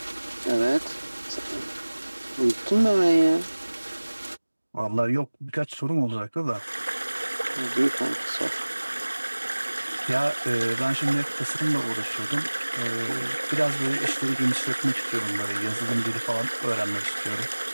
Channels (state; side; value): inverted; both; correlation -1.00